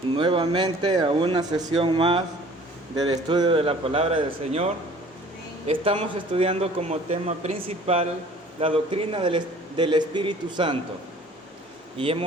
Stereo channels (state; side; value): normal; both; correlation 0.50